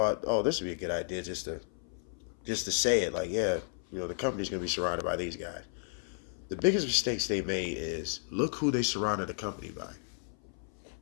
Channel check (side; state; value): right; silent; 56 dB below the other